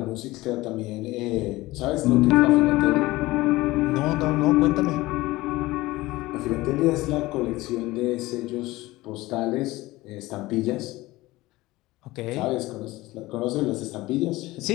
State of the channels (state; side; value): quieter; right; 19.2 dB